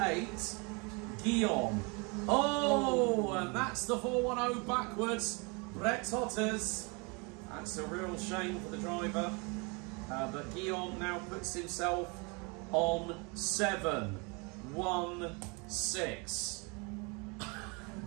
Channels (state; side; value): quieter; left; 30.5 dB